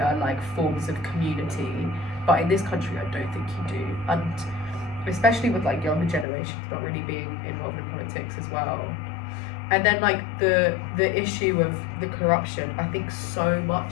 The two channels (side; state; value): right; drops out; at 6.2 s